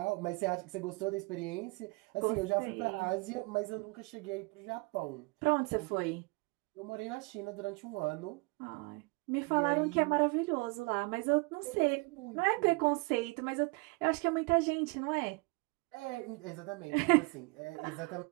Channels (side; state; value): left; quieter; 28.7 dB